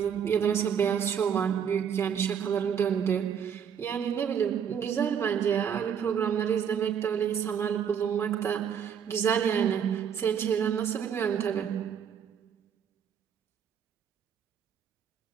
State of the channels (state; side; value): quieter; left; 7.9 dB